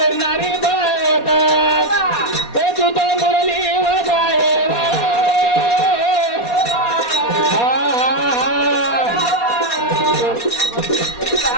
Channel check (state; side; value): late; right; 4.2 ms